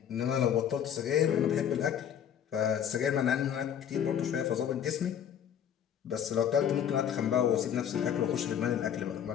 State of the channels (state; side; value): quieter; right; 9.0 dB